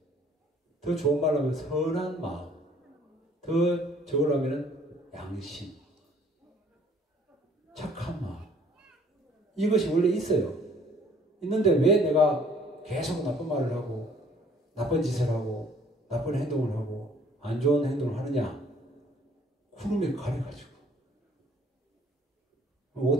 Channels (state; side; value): normal; both; correlation 0.58